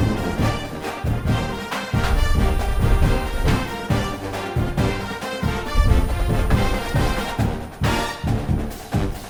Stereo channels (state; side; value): identical; both; correlation 1.00